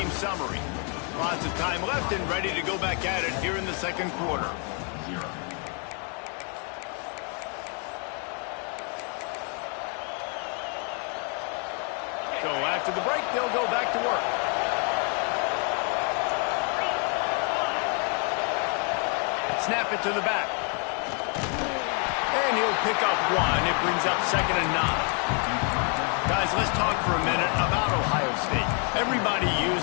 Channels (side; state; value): right; quieter; 38.1 dB